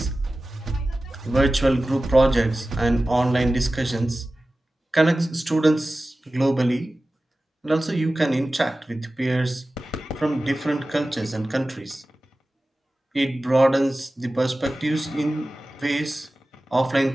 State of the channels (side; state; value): both; normal; correlation 0.96